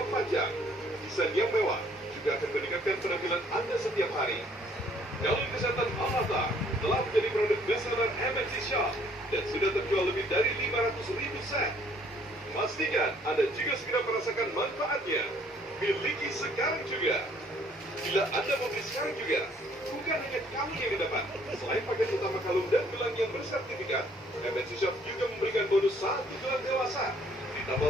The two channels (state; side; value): normal; both; correlation 0.61